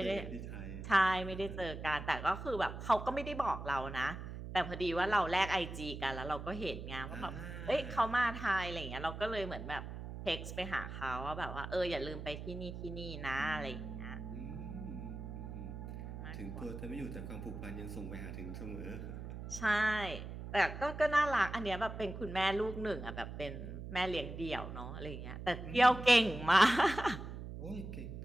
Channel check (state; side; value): noise; right; hum, 8 dB below the sound